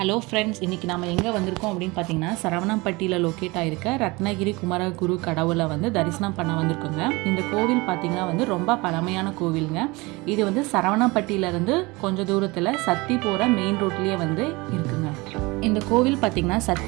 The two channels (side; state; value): left; quieter; 24.0 dB